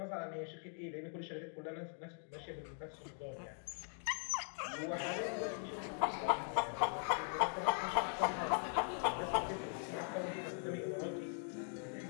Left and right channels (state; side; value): silent; right; 50 dB below the other